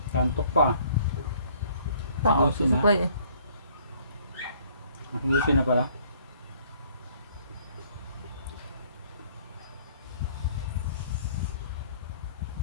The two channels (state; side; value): inverted; both; correlation -0.59